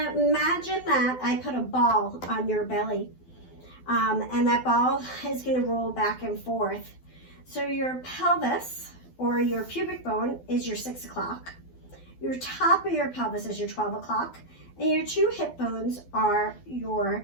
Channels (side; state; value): right; late; 12 ms